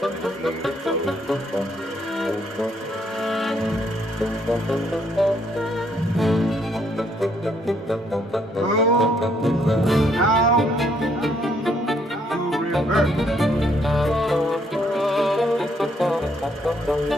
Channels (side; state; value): both; normal; correlation 0.70